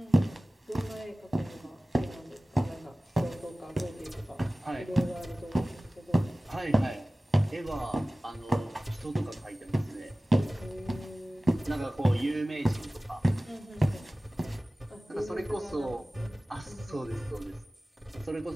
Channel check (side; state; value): both; normal; correlation 0.97